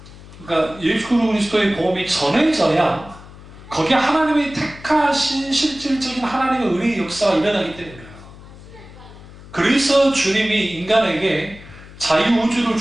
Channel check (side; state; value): left; noise; hum, 18 dB below the sound